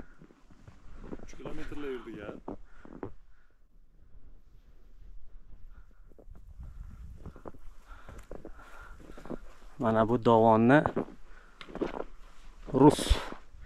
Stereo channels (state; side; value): identical; both; correlation 1.00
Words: qilaverdik ya. Mana bu dovonni rus